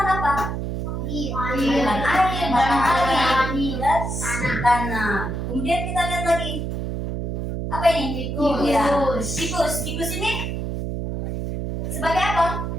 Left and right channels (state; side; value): noise; right; hum, 3 dB below the sound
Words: apa? Air, matahari, dan tanah. Kemudian kita lihat lagi apa ini? Tikus. Ya, tikus ini sebagai apa?